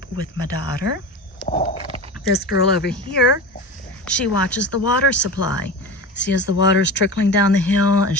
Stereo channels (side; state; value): both; normal; correlation 0.28